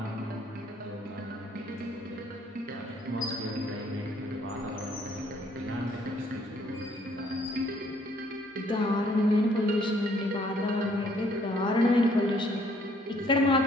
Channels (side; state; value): both; normal; correlation 0.64